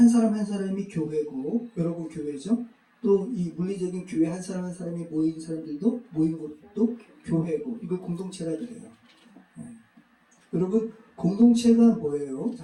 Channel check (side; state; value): both; identical; correlation 1.00